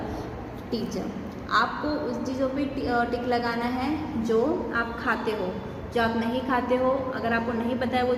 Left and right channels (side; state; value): both; identical; correlation 1.00